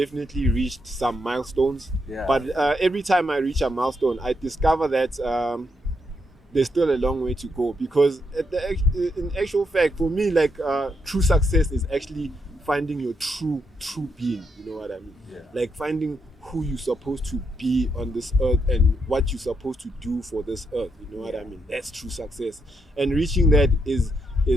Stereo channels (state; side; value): normal; both; correlation 0.80